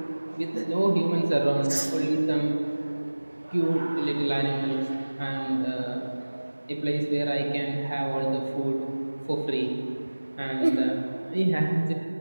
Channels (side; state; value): both; inverted; correlation -1.00